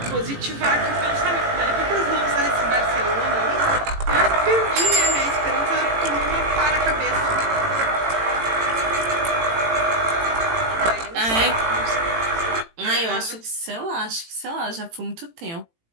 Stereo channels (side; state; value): left; late; 18 ms